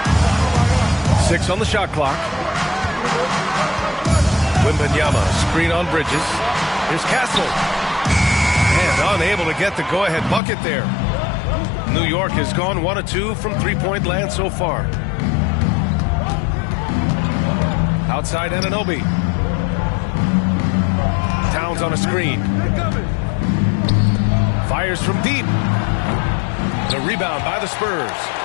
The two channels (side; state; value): right; drops out; at 10.4 s